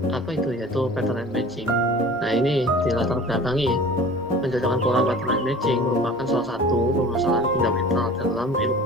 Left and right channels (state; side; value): normal; both; correlation 0.42